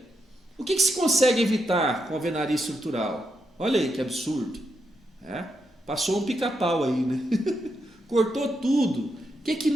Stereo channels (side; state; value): both; normal; correlation 0.84